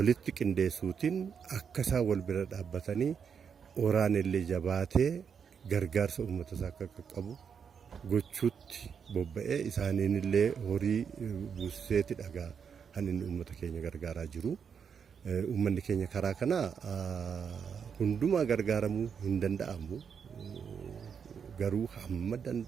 qindeessuutiin akka isaan wal bira dhaabbatanii oraan illee jabaatee gargaarsa uummata isaa akka qaqqabu gochuutti bobba'ee isaaniin illee horii buuseeti dhagaa kan inni uummata keenya gargaaraa jiru. Uummanni keenya karaa kana hundumaa gargaaramuu hin danda'amu. Garuu hamma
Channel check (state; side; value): quieter; left; 6.9 dB